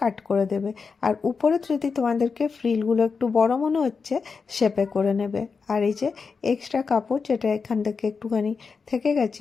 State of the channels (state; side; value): quieter; right; 5.1 dB